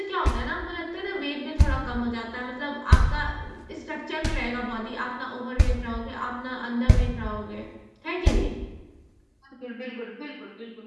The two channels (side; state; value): both; identical; correlation 1.00